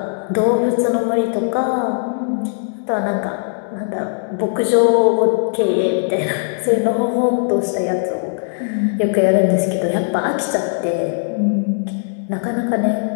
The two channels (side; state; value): right; silent; digital silence